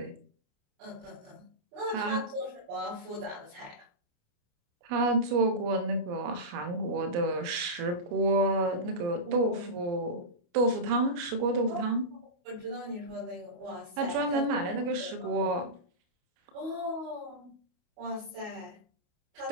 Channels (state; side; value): late; left; 28 ms